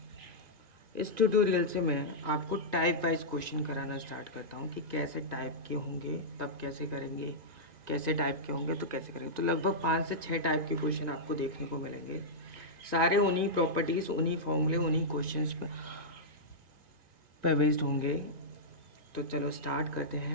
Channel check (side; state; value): left; late; 1.8 ms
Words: इस ट्यूटोरियल से मैं आपको टाइप वाइज क्वेश्चन कराना स्टार्ट करता हूँ कि कैसे टाइप के होंगे तब कैसे करेंगे, कैसे टाइप के होंगे तो कैसे करेंगे। तो लगभग 5 से 6 टाइप के क्वेश्चन आपको देखने को मिलेंगे, सारे उन्हीं प्रॉपर्टीज़, उन्हीं फॉर्मूले, उन्हीं क्वेश्चंस पर बेस्ड होंगे। तो चलो स्टार्ट करते